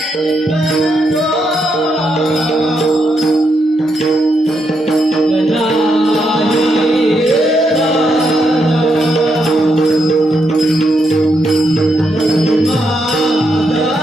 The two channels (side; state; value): both; normal; correlation 0.80